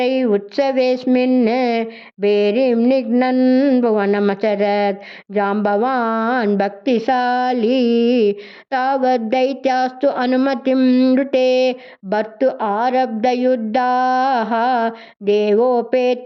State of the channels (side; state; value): both; identical; correlation 1.00